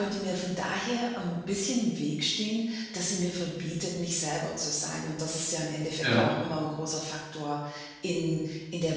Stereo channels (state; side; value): identical; both; correlation 1.00